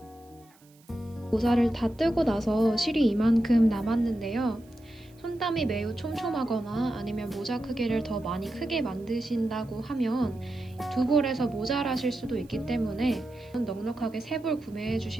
모자를 다 뜨고 나서 실이 이만큼 남았는데요. 손땀이 매우 촘촘하거나 아니면 모자 크기를 더 많이 크게 만드신다고 하면 두 볼에서 모자라실 수도 있기 때문에 넉넉하게 세 볼 구매해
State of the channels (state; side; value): noise; right; hiss, 30 dB below the sound